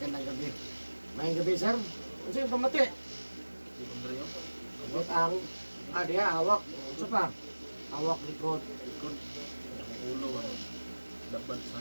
gabi. Mayang gabi sir. Ano yung pamati? Abot ang dia hawak. Ano pa? Hawak likod. Ulo ang dapat sa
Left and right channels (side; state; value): both; inverted; correlation -1.00